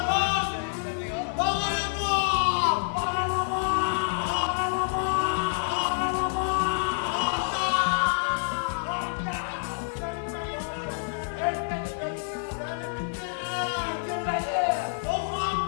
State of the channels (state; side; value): silent; right; digital silence